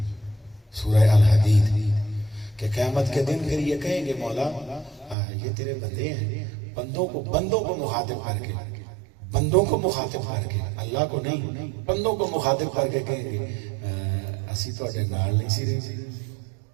سورہ الحدید کہ قیامت کے دن پھر یہ کہیں گے مولا یہ تیرے بندے ہیں بندوں کو مخاطب کر کے بندوں کو مخاطب کر کے اللہ کو نہیں بندوں کو مخاطب کر کے کہیں گے اسی تو اٹھے نال نہیں سی رہی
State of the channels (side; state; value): left; drops out; at 5.2 s